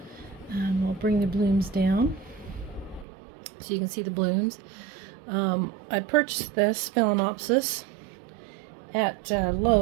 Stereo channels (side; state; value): left; drops out; at 3.1 s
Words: I'll bring the blooms down so you can see the blooms. I purchased this Phalaenopsis at